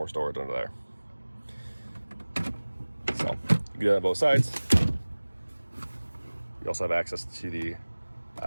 storage under there. So you can do that on both sides. You also have access to the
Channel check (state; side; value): inverted; both; correlation -1.00